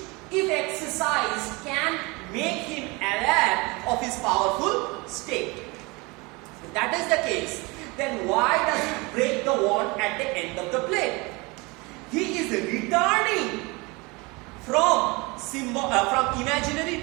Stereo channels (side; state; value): left; quieter; 25.9 dB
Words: if exercised, can make him aware of his powerful state. If that is the case, then why does he break the wand at the end of the play? He is returning from imaginary